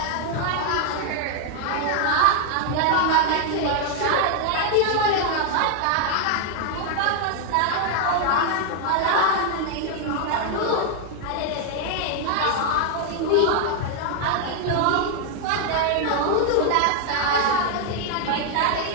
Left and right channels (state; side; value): different; both; correlation 0.00